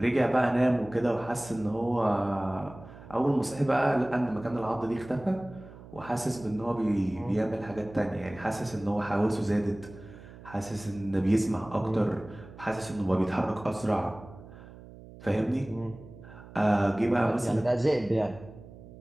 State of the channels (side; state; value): right; noise; hum, 18 dB below the sound